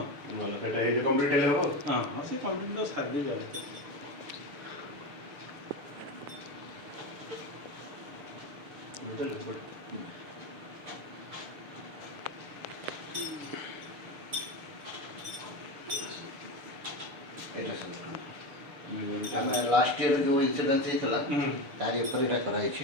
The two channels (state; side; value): late; left; 6.7 ms